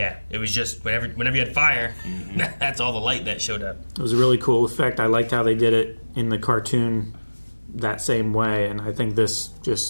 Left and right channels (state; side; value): inverted; both; correlation -1.00